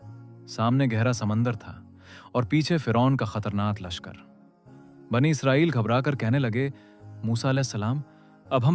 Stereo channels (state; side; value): identical; both; correlation 1.00